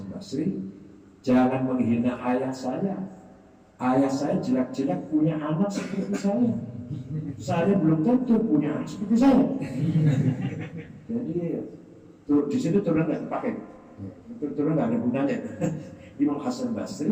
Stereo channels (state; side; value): identical; both; correlation 1.00